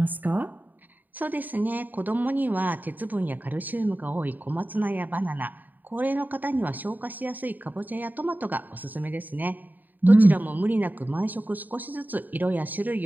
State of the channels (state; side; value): late; left; 0.087 ms